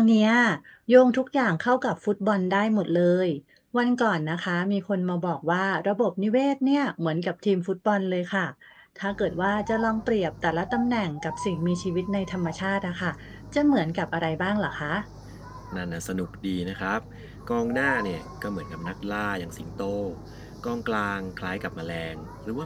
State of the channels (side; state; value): both; identical; correlation 1.00